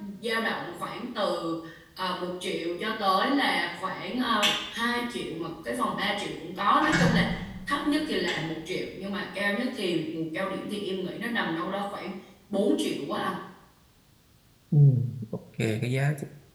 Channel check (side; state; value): both; identical; correlation 1.00